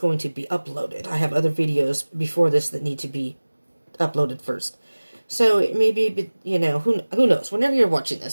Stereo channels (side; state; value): both; inverted; correlation -1.00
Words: to be uploaded. I have other videos before this that need to be uploaded first. So it may be, who knows? Whenever you're watching